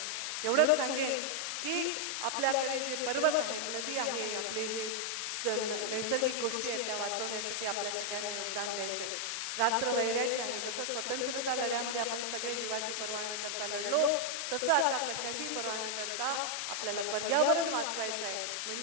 एवढंच सांगेन की आपल्याकडे जे पर्वत आहेत, नदी आहे, आपले जे नैसर्गिक गोष्टी आहेत त्या वाचवण्यासाठी आपल्या सगळ्यांना योगदान द्यायचंय. रात्र वैऱ्याची आहे. जसं स्वतंत्रता लढ्यामध्ये आपण सगळे जीवाची पर्वा न करता लढलो, तसं आता कशाची पर्वा न करता आपल्याला पर्यावरण वाचवायचं आहे.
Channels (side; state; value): left; noise; hiss, 2 dB below the sound